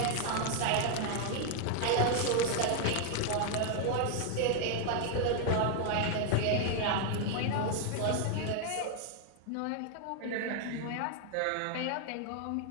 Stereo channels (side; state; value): both; different; correlation 0.00